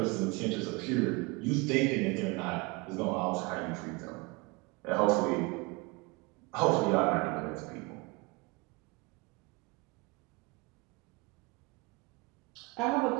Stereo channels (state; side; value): quieter; left; 26.0 dB